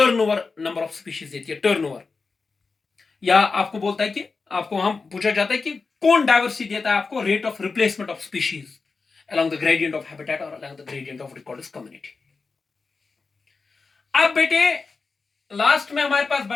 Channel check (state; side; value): quieter; right; 4.4 dB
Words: नंबर ऑफ स्पीशीज देती है, टर्नओवर. या आपको बोलता है कि आपको वहां पूछा जाता है कि कौन डाइवर्सिटी देता है आपको? Rate of replacement of species along the gradient of habitat or along the gradient of recorded community. अब बेटे लास्ट में हमारे पास